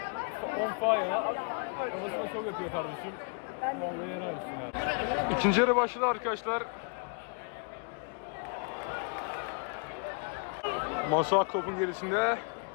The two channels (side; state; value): right; quieter; 38.8 dB